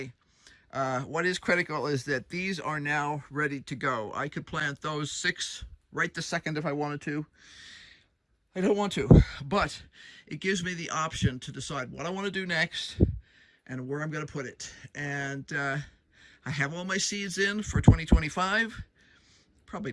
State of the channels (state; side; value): identical; both; correlation 1.00